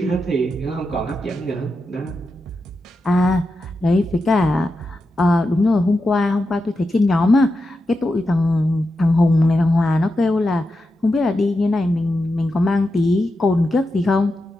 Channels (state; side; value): normal; both; correlation 0.89